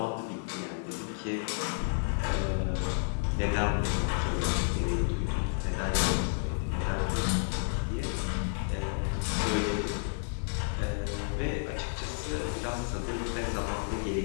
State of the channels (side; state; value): right; silent; 57 dB below the other